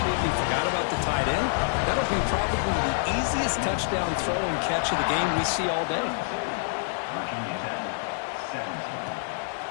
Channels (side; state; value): right; silent; digital silence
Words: forgot about the tight end. That'll be probably the easiest touchdown throw and catch of the game we see all day.